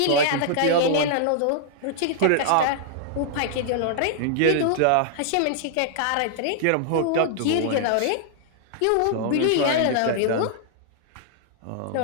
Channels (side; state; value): both; different; correlation -0.01